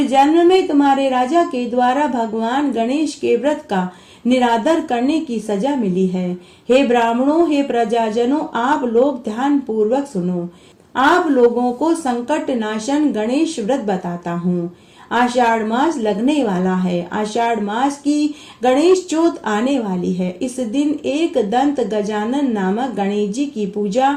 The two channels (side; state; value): both; identical; correlation 1.00